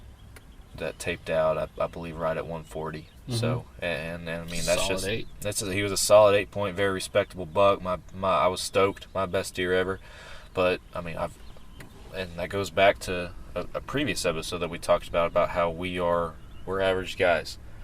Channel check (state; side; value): identical; both; correlation 1.00